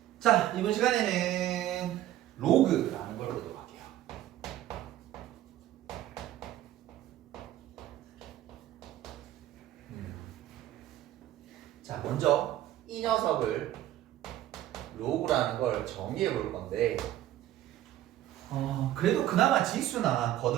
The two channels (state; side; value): quieter; left; 13.3 dB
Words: 자, 이번 시간에는 로그라는 걸 보도록 할게요. 자, 먼저 이 녀석을 로그라는 걸 정의해 볼 건데 그래도 그나마 지수나